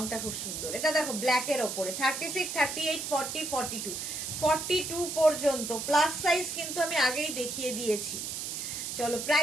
খুব সুন্দর। এটা দেখো ব্ল্যাকের ওপরে 36, 38, 40, 42, 42 পর্যন্ত প্লাস সাইজ কিন্তু আমি আগেই দেখিয়ে দিয়েছি। চলো,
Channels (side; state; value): right; noise; hiss, 5 dB below the sound